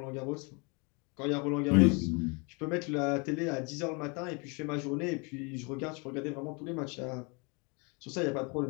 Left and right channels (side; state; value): right; quieter; 31.2 dB